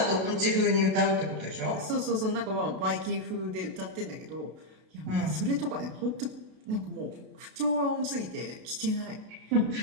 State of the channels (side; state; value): left; late; 32 ms